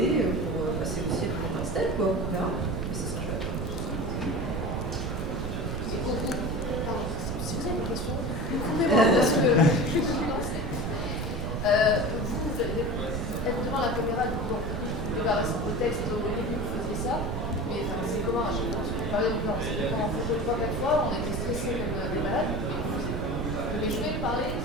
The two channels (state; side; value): noise; right; rumble, 3 dB below the sound